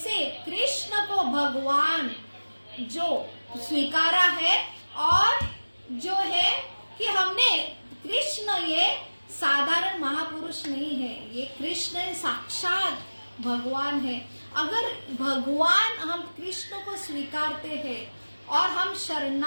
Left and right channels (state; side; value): inverted; both; correlation -1.00